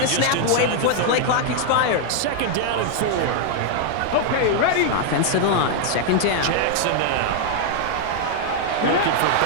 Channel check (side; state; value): both; different; correlation 0.00